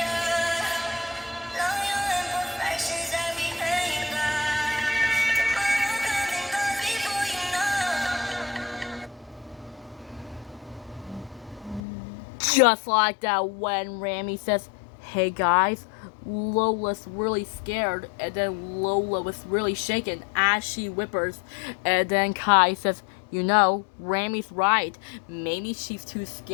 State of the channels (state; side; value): drops out; right; at 11.8 s